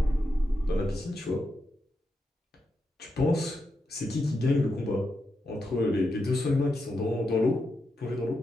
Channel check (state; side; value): normal; both; correlation 0.85